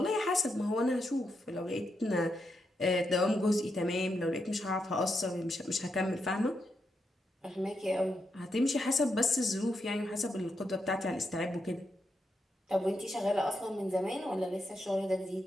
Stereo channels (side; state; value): both; normal; correlation 0.83